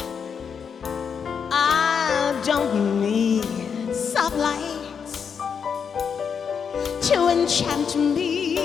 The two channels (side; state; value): right; quieter; 6.7 dB